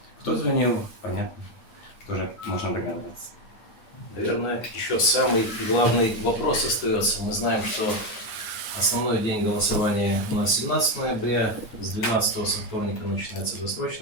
Кто звонил, понятно, тоже можно догадываться. Наверное, еще самый главный вопрос остается. Мы знаем, что основной день голосования у нас 17 ноября, с 12 со вторника начинается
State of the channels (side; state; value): right; late; 9.1 ms